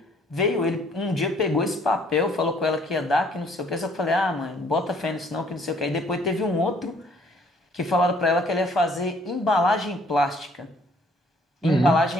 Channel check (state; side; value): normal; both; correlation 0.61